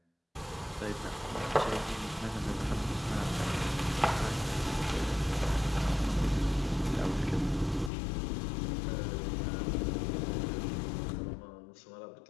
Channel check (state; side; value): drops out; right; at 7.9 s